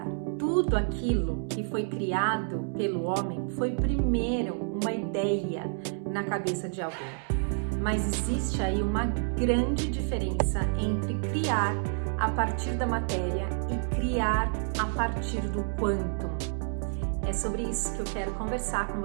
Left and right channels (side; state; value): left; silent; 58 dB below the other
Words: Tudo aquilo que foi criado pelo homem foi primeiro uma ideia na cabeça de alguém. Mas existe aí uma grande diferença entre criar a partir da matéria e criar a partir do quantum. É sobre isso que eu quero conversar com